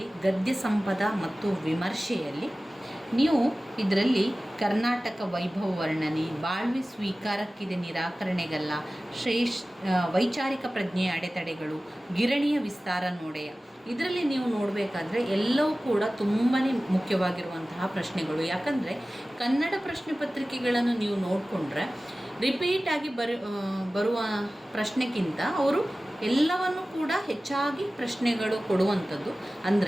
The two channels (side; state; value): both; normal; correlation 0.97